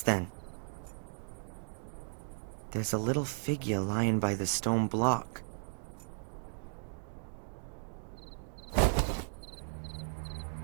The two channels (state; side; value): silent; left; digital silence